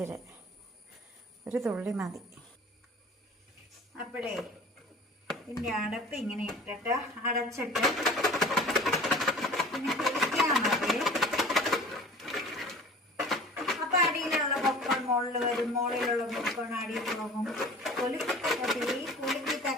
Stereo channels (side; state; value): both; normal; correlation 0.43